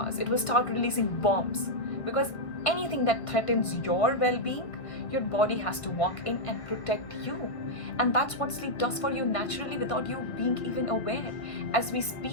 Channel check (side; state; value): right; late; 1.5 ms